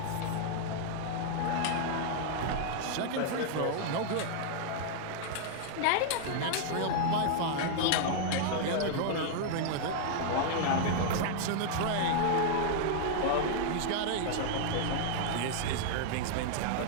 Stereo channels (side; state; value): both; different; correlation -0.01